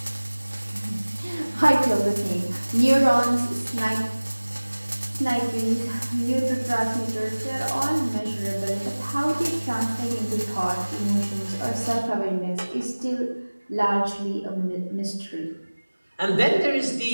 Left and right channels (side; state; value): both; inverted; correlation -1.00